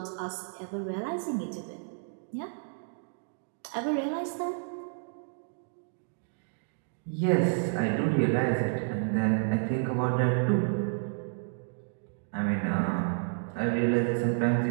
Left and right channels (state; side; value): silent; left; 57 dB below the other